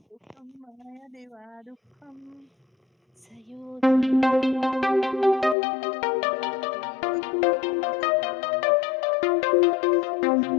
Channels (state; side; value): drops out; right; at 5.6 s